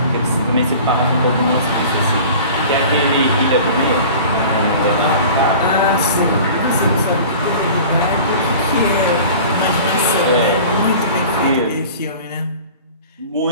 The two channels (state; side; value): inverted; both; correlation -0.41